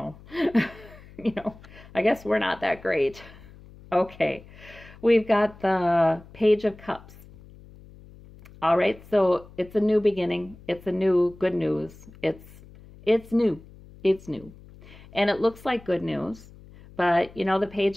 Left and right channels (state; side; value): noise; left; hum, 21 dB below the sound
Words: I guess we're not that great. Okay. We've got the Page of Cups. All right, so it's a new beginning. It's a new good news. It's new. It's new. And it looks like good news. But, you know, the